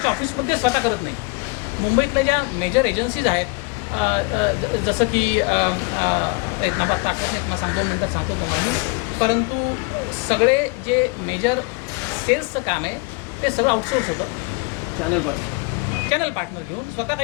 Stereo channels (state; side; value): quieter; right; 28.3 dB